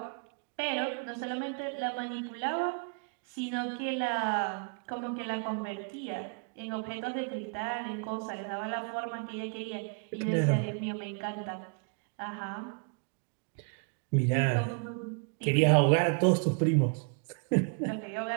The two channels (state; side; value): quieter; left; 38.6 dB